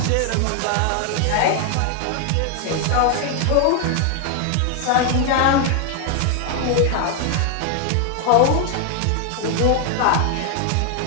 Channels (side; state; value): both; different; correlation 0.00